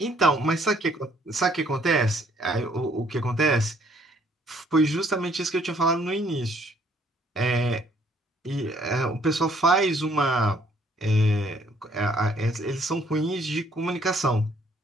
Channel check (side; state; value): both; normal; correlation 0.64